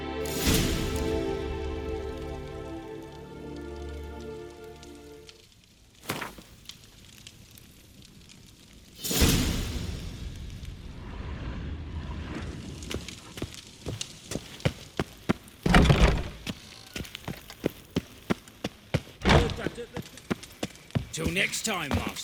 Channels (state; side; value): identical; both; correlation 1.00